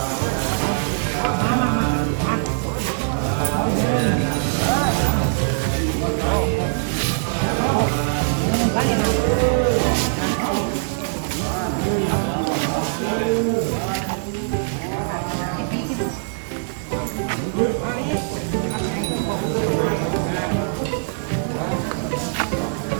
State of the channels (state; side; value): silent; left; 58 dB below the other